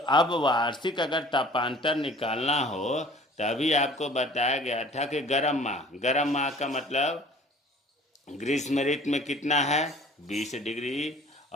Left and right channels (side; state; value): both; normal; correlation 0.49